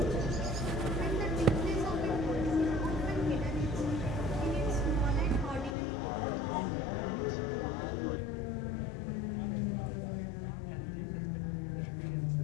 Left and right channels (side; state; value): right; drops out; at 5.8 s